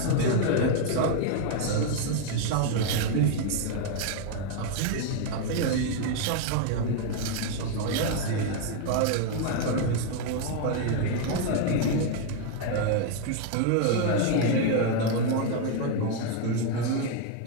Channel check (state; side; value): different; both; correlation 0.01